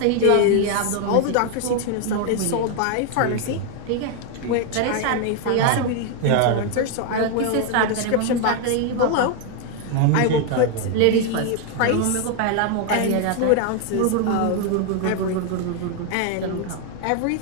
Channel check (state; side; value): different; both; correlation 0.01